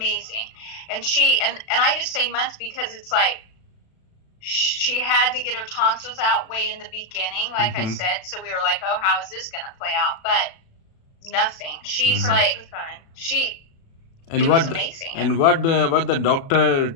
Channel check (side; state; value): right; late; 36 ms